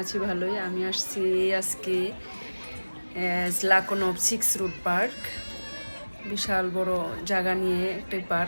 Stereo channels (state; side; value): inverted; both; correlation -1.00